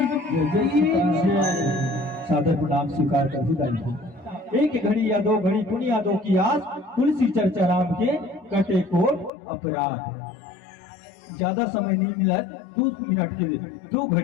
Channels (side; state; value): right; drops out; at 9.3 s